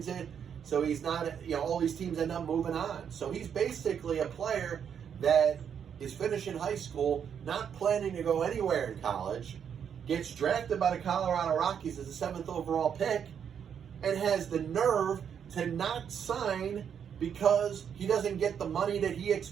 it. So he's not, all these teams end up moving on. So he's basically a player that is finishing high school, not planning to go anywhere in college, gets drafted by the Colorado Rockies as the 7th overall pick, and has the nerve to not sign because he doesn't get the money that he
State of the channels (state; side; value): quieter; left; 8.0 dB